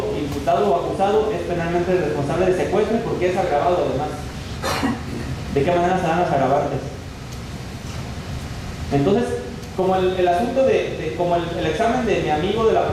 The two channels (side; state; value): both; identical; correlation 1.00